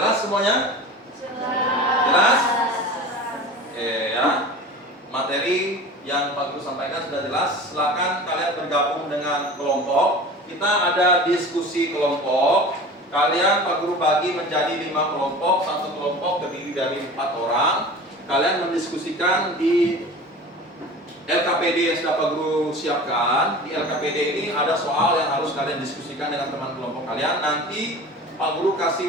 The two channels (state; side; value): normal; both; correlation 0.37